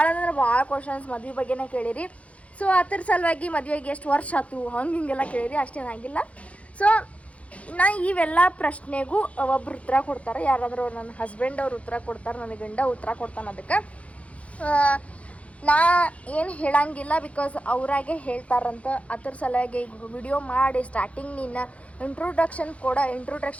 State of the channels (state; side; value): late; right; 0.064 ms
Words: ಅಂದ್ರೆ ಭಾಳ ಕ್ವಶನ್ಸ್ ಮದುವೆ ಬಗ್ಗೆನೇ ಕೇಳಿರಿ. ಸೊ ಅದ್ರ ಸಲುವಾಗಿ ಮದುವೆಗೆ ಎಷ್ಟು ವರ್ಷ ಆಯ್ತು ಹಿಂಗೆಲ್ಲ ಕೇಳಿರಿ. ಅಷ್ಟೇನಾಗಿಲ್ಲ. ಸೊ ನಾ ಇವೆಲ್ಲ ಪ್ರಶ್ನೆಗೂ ಒಬ್ರು ಉತ್ತರ ಕೊಡ್ತಾರೆ. ಯಾರಾದರೂ ನನ್ನ ಹಸ್ಬೆಂಡ್ ಅವ್ರು ಉತ್ತರ ಕೊಡ್ತಾರೆ, ನನ್ನ ಗಂಡ ಉತ್ತರ ಕೊಡ್ತಾನೆ. ಅದಕ್ಕೆ ನಾ ಏನು ಹೇಳಂಗಿಲ್ಲ, ಬಿಕಾಸ್ ಅವರಾಗೆ ಹೇಳ್ತಾರಂತ. ಅದ್ರ ಸಲುವಾಗಿ ಈಗ ವಿಡಿಯೋ ಮಾಡಿ ಸ್ಟಾರ್ಟಿಂಗ್ ನಿನ್ನ ಇಂಟ್ರೊಡಕ್ಷನ್ ಕೂಡ